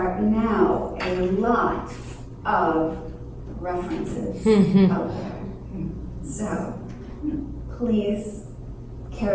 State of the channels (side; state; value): both; identical; correlation 1.00